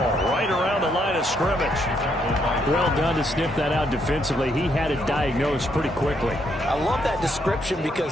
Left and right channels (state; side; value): normal; both; correlation 0.74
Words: right around the line of scrimmage. Well done to sniff that out defensively. He had it diagnosed pretty quickly. I love that description